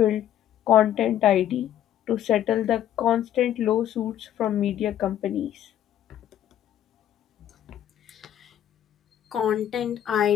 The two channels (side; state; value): right; quieter; 11.2 dB